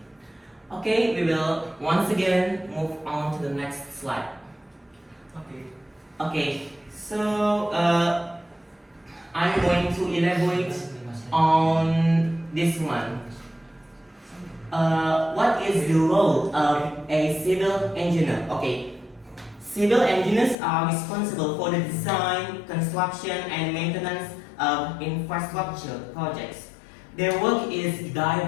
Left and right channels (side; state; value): right; drops out; at 20.6 s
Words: Okay, we will once again move on to the next slide. Okay, so I'm going to elaborate on this one. What is the role of a civil engineer? Okay, civil engineers are responsible for the design, construction, and maintenance of infrastructure projects. Their work is